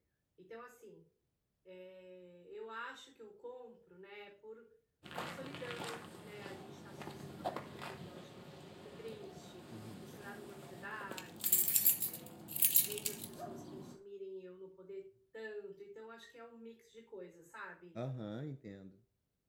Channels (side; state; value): both; identical; correlation 1.00